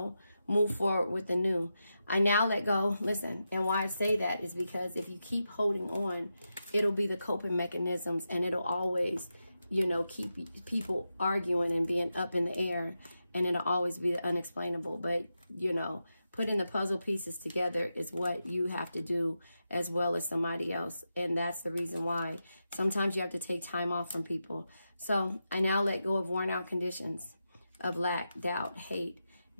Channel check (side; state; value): both; inverted; correlation -0.88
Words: move forward with the new. I now let go. Listen, and why I say that is because if you keep holding on, it'll be the coping mechanisms, and it'll always, you know, keep people arguing and being up in the air, and it'll always be the unexplainable. But, you know, putting the puzzle pieces together is what you have to do as well as somebody else. And that's the reason why sometimes you have to take time off from people. So I now let go of worn out conditions of lack, doubt, hate,